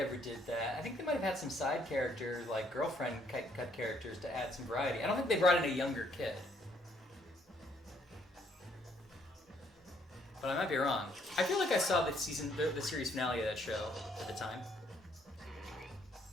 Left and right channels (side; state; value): both; normal; correlation 0.68